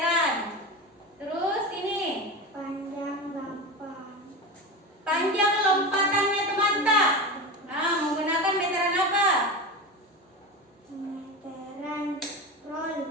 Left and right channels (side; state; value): both; normal; correlation 0.24